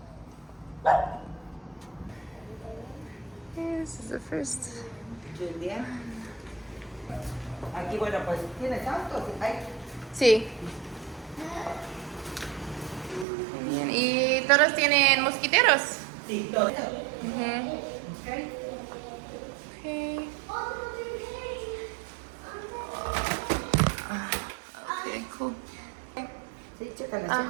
This is the first. Julia. Aquí, bueno, pues, ¿tienes autos? Sí. Bien. ¿Y todos tienen mosquiteros? Sí, todos. Okay. Okay. Okay, cool. Sí, chécala, Okay.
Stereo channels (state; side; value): drops out; left; at 13.2 s